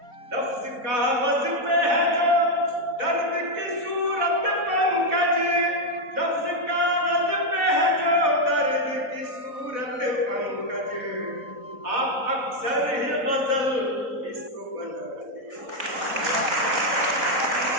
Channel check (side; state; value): left; late; 4.1 ms